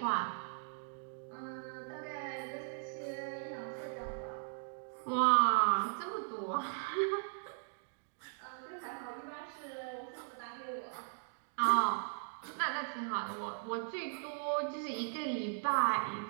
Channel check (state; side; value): silent; left; digital silence